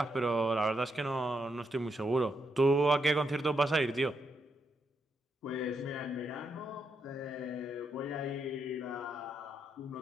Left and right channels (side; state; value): both; normal; correlation 0.81